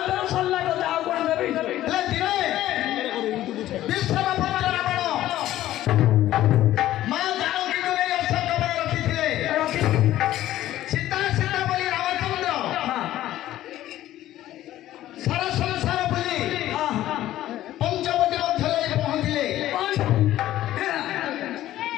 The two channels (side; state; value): right; quieter; 13.9 dB